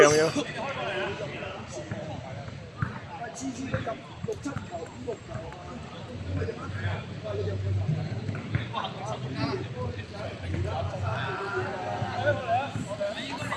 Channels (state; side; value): identical; both; correlation 1.00